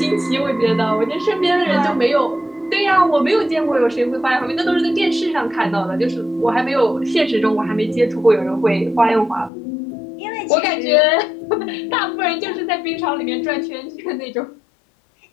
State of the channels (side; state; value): right; drops out; at 9.5 s